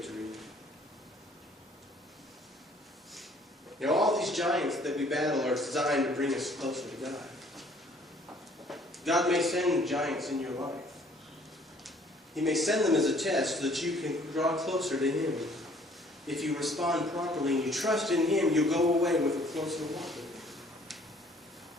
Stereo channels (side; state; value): both; normal; correlation 0.58